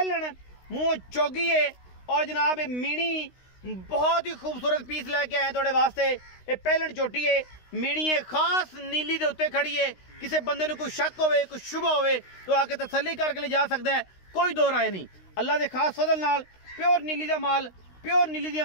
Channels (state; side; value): late; right; 16 ms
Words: मुँह चौगी है और जनाब मीणी बहुत ही खूबसूरत पीस लैके आए थोड़े वास्ते। ये पहलन चोटी है, मीणी है खास नीली के उत्ते खड़ी है। किसी बंदे को कोई शक होवे कोई शुभ होवे तो आके तसल्ली करके ले जा सकता है, कोई दो राय नहीं। अल्लाह के खास फजल नाल प्योर नीली का माल, प्योर नीली दी